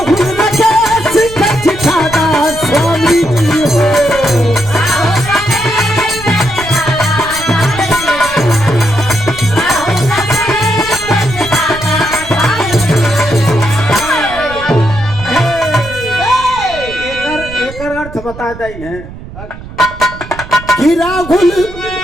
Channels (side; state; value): right; noise; rumble, 14 dB below the sound